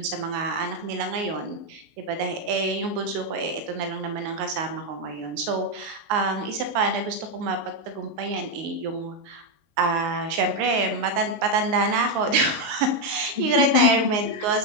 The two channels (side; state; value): left; late; 19 ms